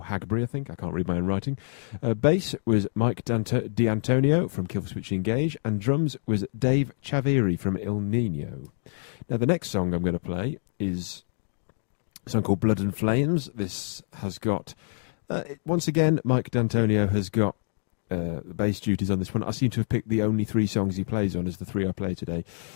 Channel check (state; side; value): silent; right; digital silence